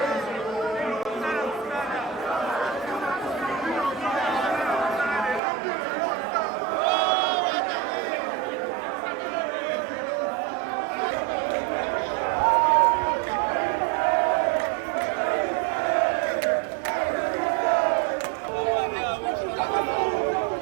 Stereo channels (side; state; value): left; drops out; at 5.4 s